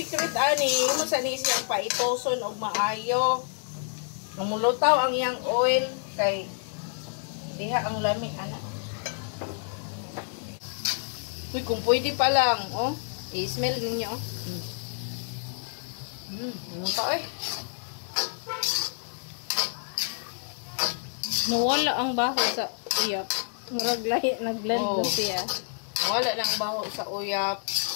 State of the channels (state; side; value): silent; right; 59 dB below the other